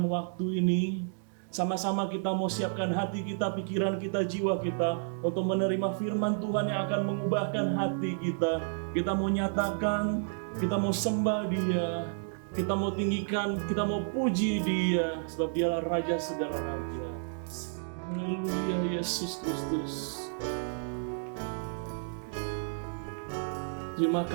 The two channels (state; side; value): silent; left; digital silence